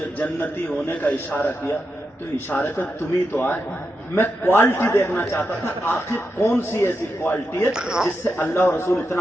جنتی ہونے کا اشارہ کیا تو اشارے پہ تم ہی تو آئے، میں کوالٹی دیکھنا چاہتا تھا آخر کون سی ایسی کوالٹی ہے جس سے اللہ اور رسول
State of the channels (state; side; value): normal; both; correlation 0.87